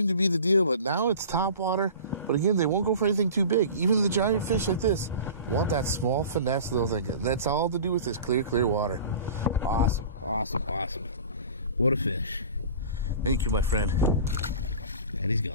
to be the deal, but now it's top water. But again, they won't go for anything too big. Even the giant fish like this want that small finesse little thing. That's all to do with this clear water. Awesome, awesome, awesome. What a fish. Thank you, my friend. And he's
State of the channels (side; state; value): both; inverted; correlation -0.39